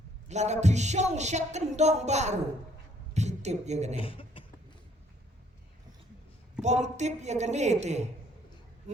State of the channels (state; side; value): normal; both; correlation 0.63